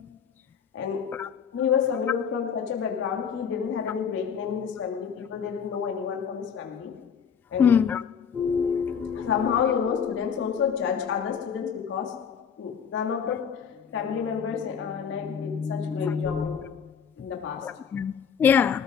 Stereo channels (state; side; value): quieter; right; 7.1 dB